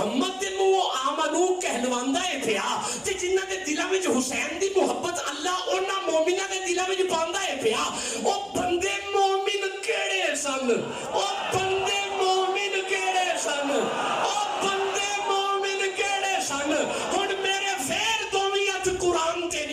دے منہوں آمنو کہلواندا ہے پیا, تے جنہاں دے دلاں وچ حسین دی محبت اللہ انہاں مومناں دے دلاں وچ پاندا ہے پیا, او بندے مومن کیڑے سن؟ او بندے مومن کیڑے سن؟ او بندے مومن کیڑے سن؟ ہن میرے فیر دوویں ہتھ قرآن تے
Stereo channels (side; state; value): both; identical; correlation 1.00